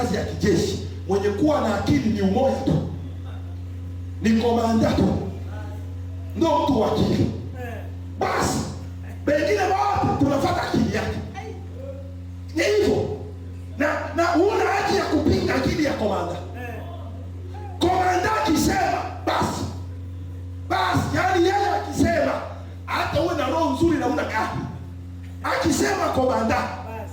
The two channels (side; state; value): both; identical; correlation 1.00